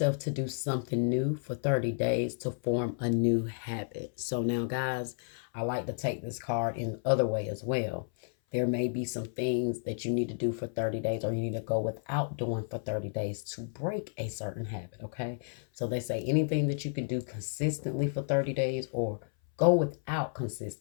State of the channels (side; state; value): right; silent; 57 dB below the other